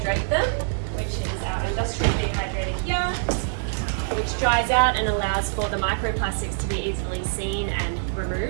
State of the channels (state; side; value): silent; left; digital silence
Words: them, which is our industrial dehydrator here, which dries out and allows for the microplastics to be easily seen and